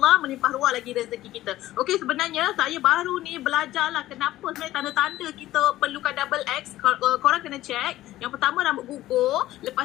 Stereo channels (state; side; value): quieter; right; 15.2 dB